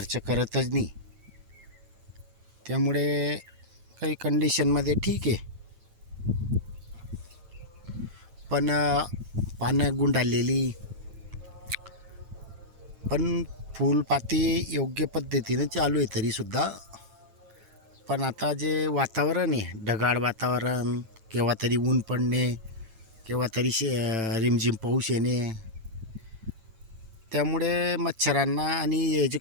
करतच नाही. त्यामुळे काही कंडिशनमध्ये ठीक आहे, पण पानं गुंडाळलेली, पण फुलपाती योग्य पद्धतीने चालू आहे तरीसुद्धा. पण आता जे वातावरण आहे, ढगाळ वातावरण, केव्हा तरी ऊन पडणे, केव्हा तरी रिमझिम पाऊस येणे, त्यामुळे मच्छरांना आणि हे जे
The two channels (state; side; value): late; left; 8.9 ms